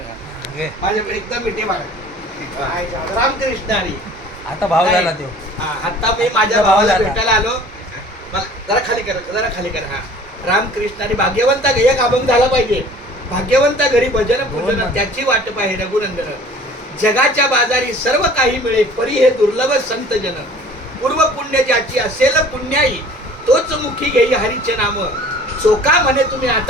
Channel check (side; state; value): both; normal; correlation 0.48